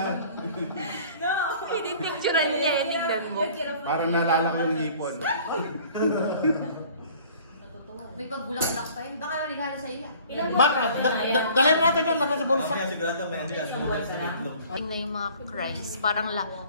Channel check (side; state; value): both; inverted; correlation -0.51